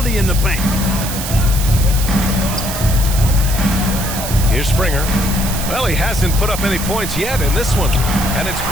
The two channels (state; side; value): noise; right; hiss, 6 dB below the sound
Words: in the paint. Here's Springer. Well, he hasn't put up any points yet in this one. And it's